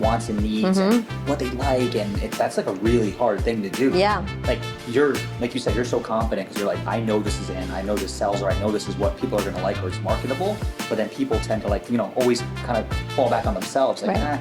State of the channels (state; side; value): identical; both; correlation 1.00